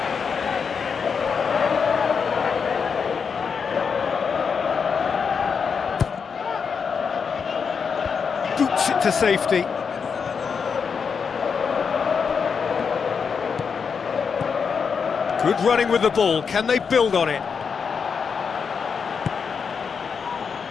Boots it to safety. Good running with the ball. Can they build on it?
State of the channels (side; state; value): right; quieter; 6.0 dB